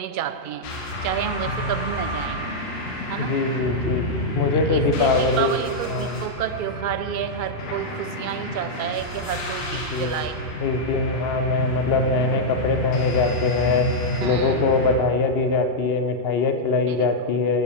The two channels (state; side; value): late; right; 3.0 ms